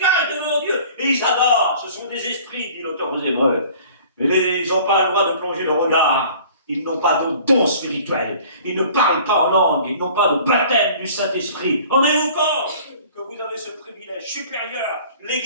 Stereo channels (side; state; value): both; inverted; correlation -0.48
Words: devant Dieu. Et ils adorent. Ce sont des esprits, dit l'auteur aux Hébreux. Mais ils n'ont pas le droit de plonger le regard. Ils n'ont pas de don spirituel. Ils ne parlent pas en langue. Ils n'ont pas de baptême du Saint-Esprit. En avez-vous compte que vous avez ce privilège supérieur?